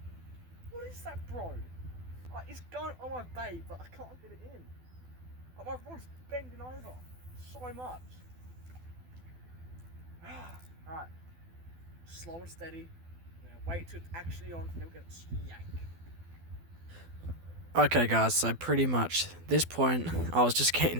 What is that, bro? Like, it's going on my bait, but I can't get it in. Like, my rod's bending over so much. Alright. Slow and steady. Wait till it's actually on, and then we're gonna yank. Okay guys, so pretty much this point I was just getting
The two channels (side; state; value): left; late; 12 ms